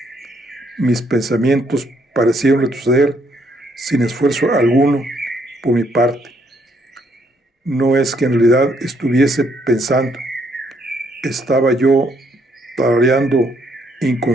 mis pensamientos parecieron retroceder sin esfuerzo alguno por mi parte. No es que en realidad estuviese pensando, estaba yo tarareando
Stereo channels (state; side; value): normal; both; correlation 0.71